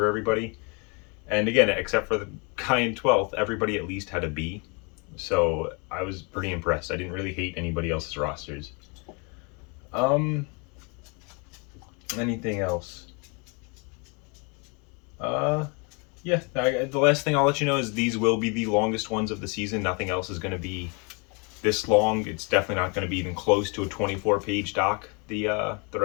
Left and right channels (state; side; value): quieter; right; 32.6 dB